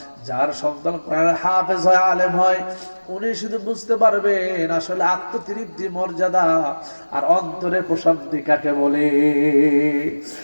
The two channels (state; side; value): inverted; both; correlation -1.00